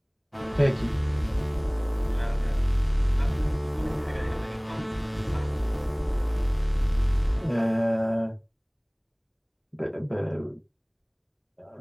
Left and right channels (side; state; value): both; identical; correlation 1.00